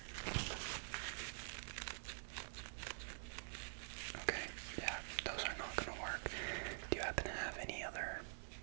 Okay, yeah, those are not gonna work. Do you happen to have any other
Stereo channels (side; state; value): left; silent; digital silence